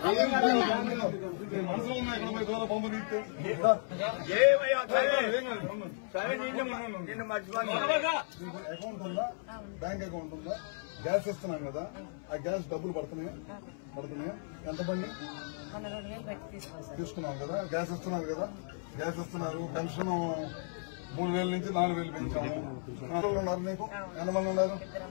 మనసులో ఉన్నాయి ఇక్కడ పోయి దూరం పంపు తీస్తే అకౌంట్ ఉందా బ్యాంక్ అకౌంట్ ఉందా గ్యాస్ ఇస్తున్నాం కదా ఆ గ్యాస్ డబ్బులు పడుతున్నాయా ఎంత బండి తీసుకున్నాం కదా గ్యాస్ ఇస్తున్నారు కదా గ్యాస్ ఇస్తున్నారు పెన్షన్ 3000 నుంచి 4000 పెంచాము ఉన్నారు నీకు ఎంతమంది ఉన్నారు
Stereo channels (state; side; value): silent; right; 55 dB below the other